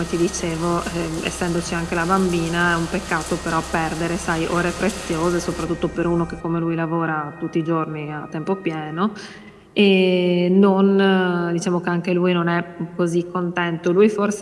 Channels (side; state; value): both; identical; correlation 1.00